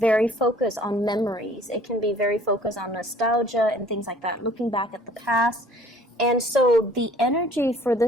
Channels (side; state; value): both; normal; correlation 0.54